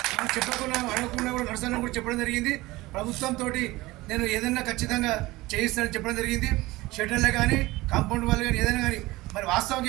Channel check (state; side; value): quieter; left; 19.8 dB